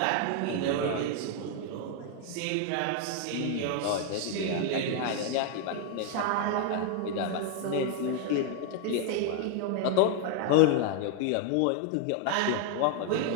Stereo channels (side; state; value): both; different; correlation 0.00